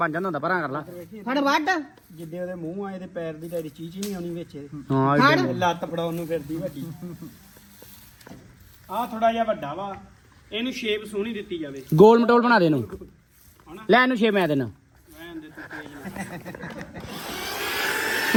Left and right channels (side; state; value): both; identical; correlation 1.00